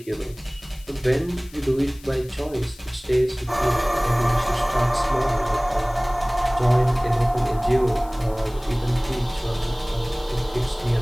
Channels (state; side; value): noise; left; hiss, 23 dB below the sound